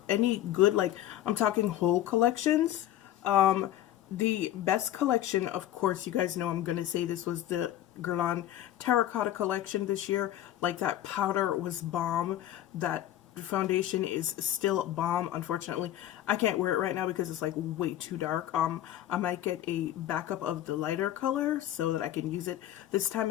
any good. Like, I'm talking whole collections. The best collection, of course, you guys know I'm going to say this, was the Guerlain Terracotta collection this year. Like, that powder was bomb. That foundation is still bomb. Unfortunately, I can't wear it right now because it's like way too dark. I might get a backup of the lighter color so that I can use it this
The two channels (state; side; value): quieter; right; 12.7 dB